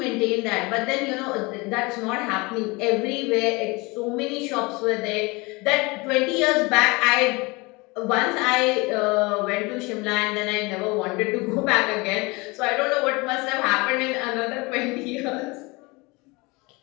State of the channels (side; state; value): right; quieter; 25.4 dB